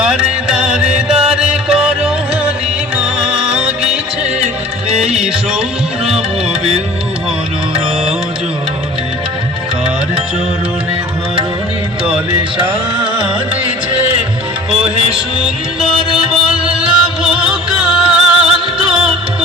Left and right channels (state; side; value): normal; both; correlation 0.45